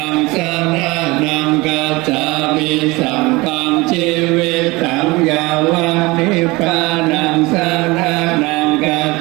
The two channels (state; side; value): quieter; left; 22.9 dB